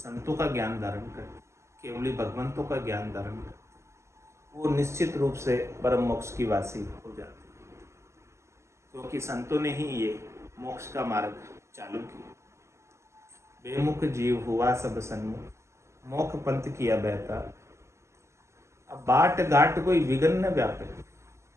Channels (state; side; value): late; left; 0.13 ms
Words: का ज्ञान धारण करती, केवली भगवंतों का ज्ञान धारण करती, वो निश्चित रूप से परम मोक्ष की वासी हो जाती है, क्योंकि संतों ने ही ये मोक्ष का मार्ग चालू किया। बेमुख जीव हुआ सब सन्मुख, मोख पंथ किया बहता, अब बाट घाट कोई विघ्न न व्यापे।